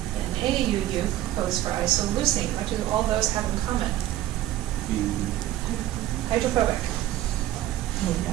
and AUU codes for isoleucine. What do all those have in common? Hydrophobic.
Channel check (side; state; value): left; quieter; 14.1 dB